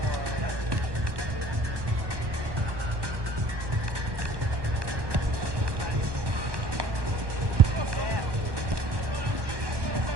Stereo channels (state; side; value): late; left; 1.2 ms